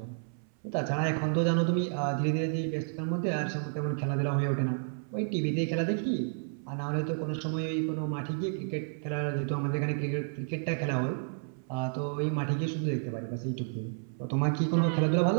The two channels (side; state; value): left; silent; 57 dB below the other